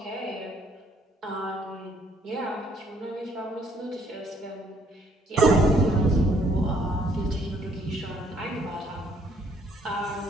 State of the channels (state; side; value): normal; both; correlation 0.65